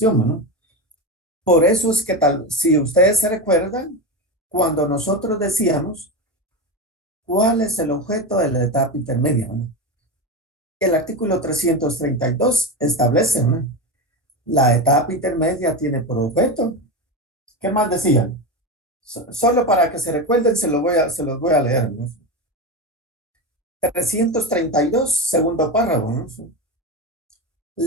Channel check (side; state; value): both; normal; correlation 0.17